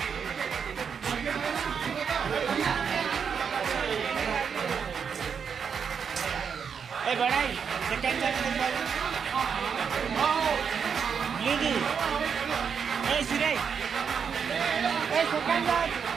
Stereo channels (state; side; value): quieter; left; 6.7 dB